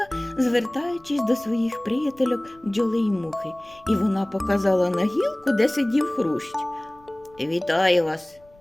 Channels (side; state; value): left; noise; rumble, 29 dB below the sound